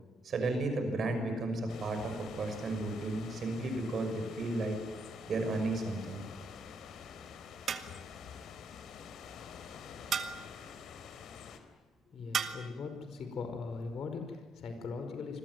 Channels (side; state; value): both; normal; correlation 0.76